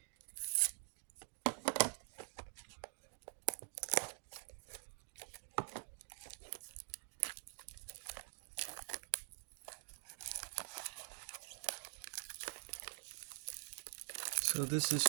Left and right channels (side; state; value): left; silent; digital silence